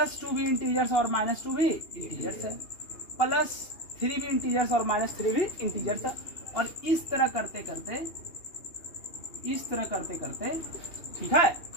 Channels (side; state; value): right; late; 2.8 ms